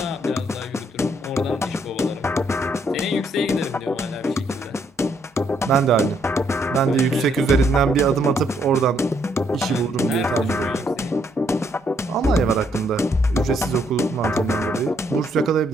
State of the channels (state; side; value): normal; both; correlation 0.72